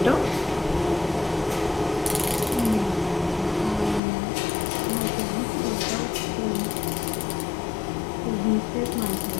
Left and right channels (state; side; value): drops out; right; at 4.0 s